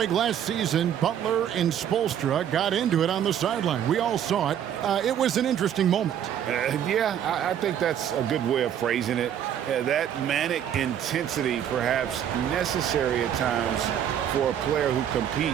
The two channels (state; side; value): quieter; left; 9.7 dB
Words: last season, Butler and Spoelstra got into it on the sideline. We all saw it. It was an interesting moment. Yeah, I think that's a good way of phrasing it. Yeah, that manic intensity perhaps necessary at times for a player who